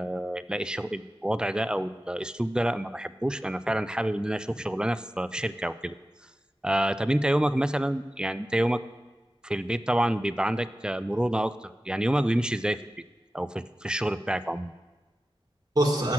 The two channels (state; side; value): normal; both; correlation 0.93